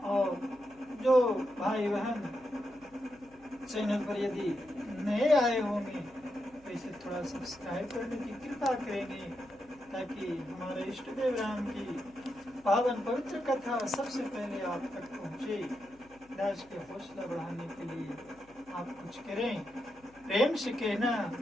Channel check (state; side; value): noise; left; hum, 28 dB below the sound